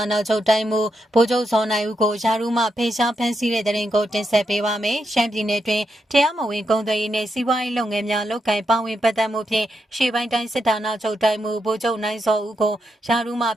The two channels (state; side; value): normal; both; correlation 0.83